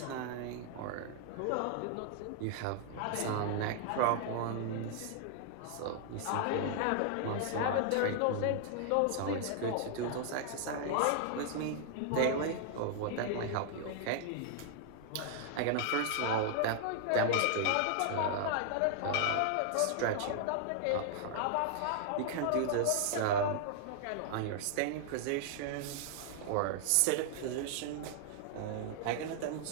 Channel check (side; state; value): both; different; correlation -0.01